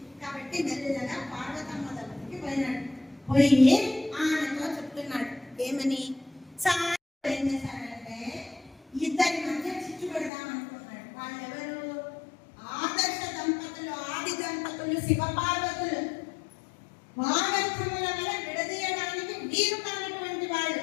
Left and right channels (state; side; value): drops out; right; at 10.3 s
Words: కాబట్టి మెల్లగా పార్వతమ్మ దగ్గరికి పోయినాడు. పోయి ఆమెతో చెప్తున్నాడు ఏమని, ఏం చేశాడంటే ఇద్దరి మధ్య చిచ్చు పెడదాం అనుకున్నాడు. వాళ్ళెవరు? ఆదర్శ దంపతులు, ఆది దంపతులు, శివపార్వతులు. వాగర్థముల వల్ల విడదీయడానికి వీలు కానటువంటి వాళ్ళు,